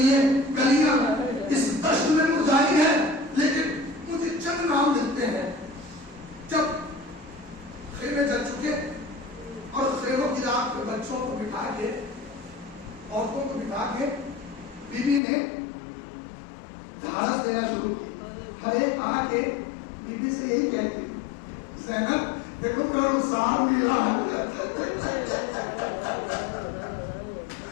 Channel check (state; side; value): drops out; right; at 15.2 s